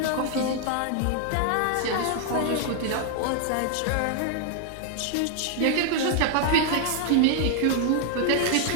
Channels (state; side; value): different; both; correlation 0.00